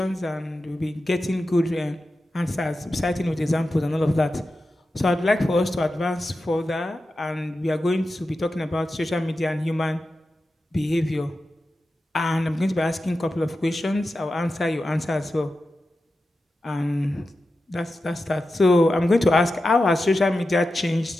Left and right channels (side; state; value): both; normal; correlation 0.92